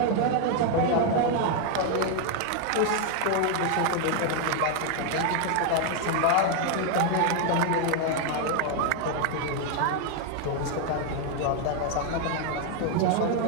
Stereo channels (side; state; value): both; different; correlation 0.00